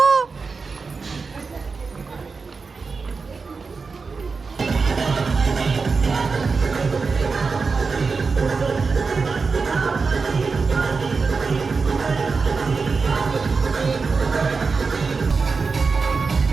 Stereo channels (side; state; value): left; quieter; 4.6 dB